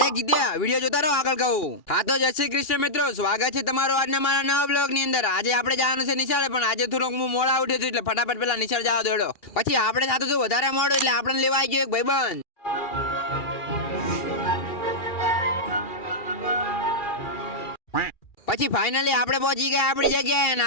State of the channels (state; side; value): late; right; 2.4 ms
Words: જીત્યા. વિડિયો જોતા રહો, આગળ કહું. હા તો જય શ્રી કૃષ્ણ મિત્રો, સ્વાગત છે તમારું આજના મારા નવા બ્લોગની અંદર. આજે આપણે જવાનું છે નિશાળે, પણ આજે થોડોક હું મોડા ઉઠ્યો છું એટલે ફટાફટ પેલા નિશાળ જવા દોડો. પછી આપણે સાથે જો વધારે મોડું એટલે આપણને લેવા આવી ગયો એક ભાઈબંધ. પછી ફાઇનલી આપણે પહોંચી ગયા આપણી જગ્યાએ અને